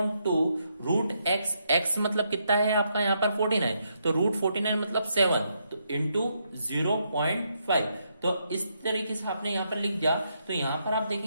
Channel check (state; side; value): inverted; both; correlation -0.78